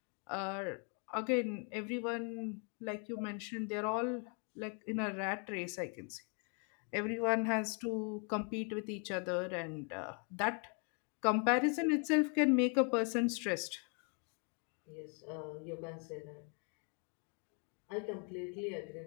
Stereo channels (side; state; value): right; quieter; 39.4 dB